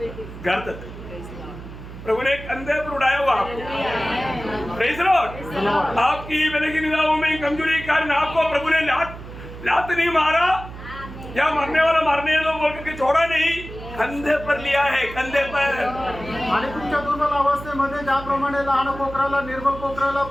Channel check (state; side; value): noise; right; hum, 13 dB below the sound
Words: घर तक। प्रभु ने कंधे पर उड़ाया हुआ आपको। Praise Lord. आपकी मैंने की निगाहों में कमजोरी के कारण आपको प्रभु ने लात नहीं मारा या मरने वाला मारने दो बोल के छोड़ा नहीं, कंधे पर लिया है, कंधे पर। आणि तुमच्या दुर्बल अवस्थेमध्ये ज्याप्रमाणे लहान कोकराला निर्बल कोकराला